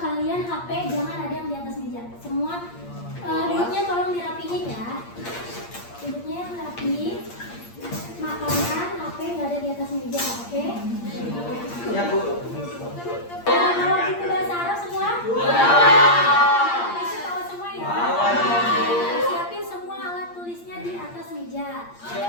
HP jangan ada yang di atas meja. Semua duduknya tolong dirapihin ya. Duduknya yang rapi. Makanan, HP nggak ada di atas meja, oke? Ya Bu. Kalau buku bahasa Arab semua? Bisa tahu semua ya? Siapin semua alat tulisnya di atas meja.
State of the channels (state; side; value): late; right; 8.6 ms